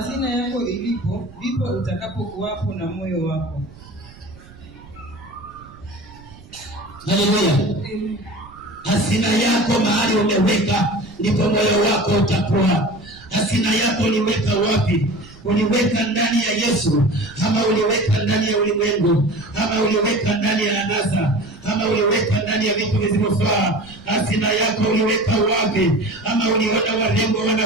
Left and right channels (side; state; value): right; noise; rumble, 22 dB below the sound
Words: yako ilipo, ndipo utakapokuwapo na moyo wako. Haleluya. Hazina yako mahali umeweka, ndipo moyo wako utakuwa. Hazina yako uliweka wapi? Uliweka ndani ya Yesu, ama uliweka ndani ya ulimwengu, ama uliweka ndani ya anasa, ama uliweka ndani ya vitu visivyofaa? Hazina yako uliweka wapi? Ama uliona warembo